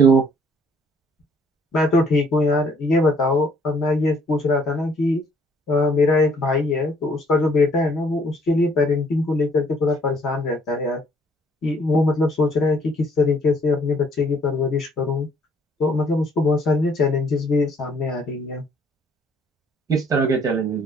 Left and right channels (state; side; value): normal; both; correlation 0.63